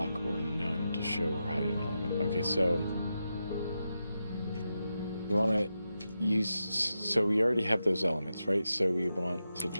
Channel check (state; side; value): inverted; both; correlation -0.88